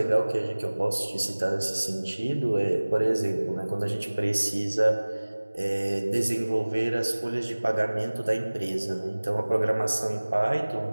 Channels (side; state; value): both; inverted; correlation -1.00